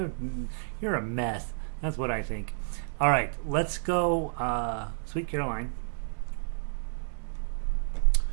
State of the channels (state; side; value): silent; left; digital silence